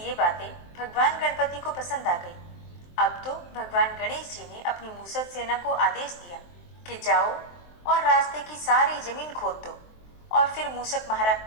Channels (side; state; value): right; late; 23 ms